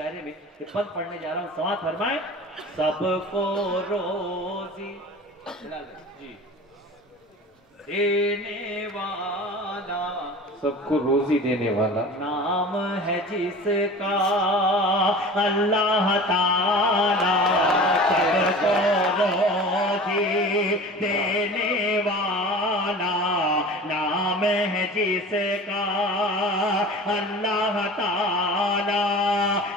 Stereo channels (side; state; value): both; normal; correlation 0.38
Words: में ये पद पढ़ने जा रहा हूँ, समाअत फरमाएं। सबको रोजी जी देने वाला, सबको रोजी देने वाला नाम है जिसका अल्लाह ताला। सबको रोजी देने वाला, नाम है जिसका अल्लाह ताला।